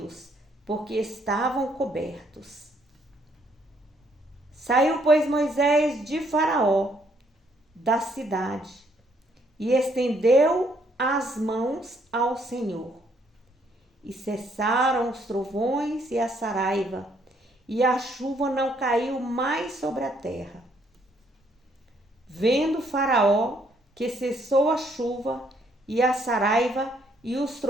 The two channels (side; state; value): both; normal; correlation 0.69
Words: porque estavam cobertos. Saiu, pois, Moisés de Faraó, da cidade, e estendeu as mãos ao Senhor. E cessaram os trovões e a saraiva, e a chuva não caiu mais sobre a terra. Vendo Faraó que cessou a chuva e a saraiva e os